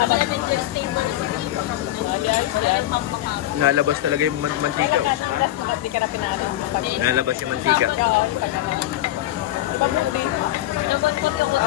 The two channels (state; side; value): quieter; right; 14.6 dB